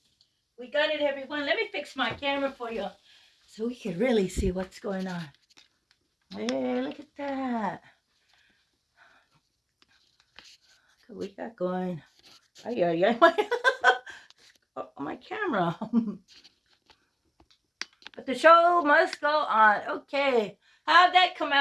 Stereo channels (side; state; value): both; identical; correlation 1.00